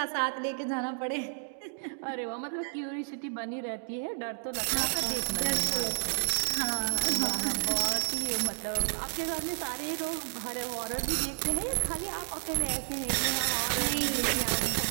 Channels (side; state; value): left; silent; digital silence